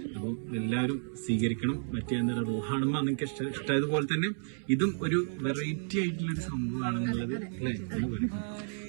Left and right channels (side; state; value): left; silent; 57 dB below the other